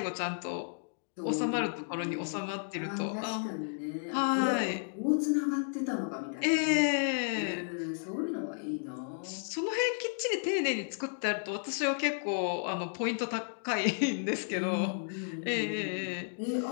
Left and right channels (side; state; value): right; silent; digital silence